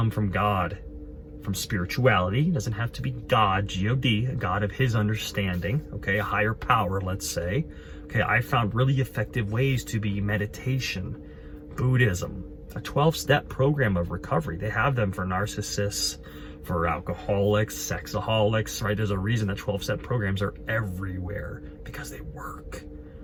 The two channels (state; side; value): identical; both; correlation 1.00